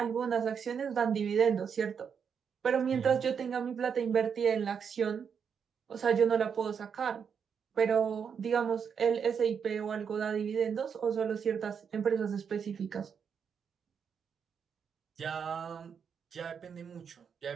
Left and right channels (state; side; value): quieter; left; 6.9 dB